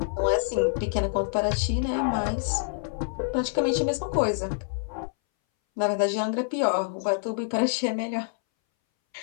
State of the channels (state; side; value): silent; right; 60 dB below the other